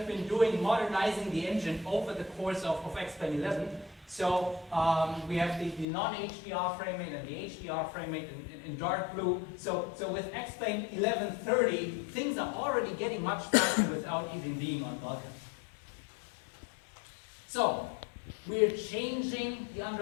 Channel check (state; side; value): drops out; right; at 5.9 s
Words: been doing, modernizing the engine over the course of Xplane 11. So we have the non-HDR frame rate and the HDR frame rate in dark blue. So with Xplane 1130, things are already getting much faster without even being on Vulkan. So we're changing the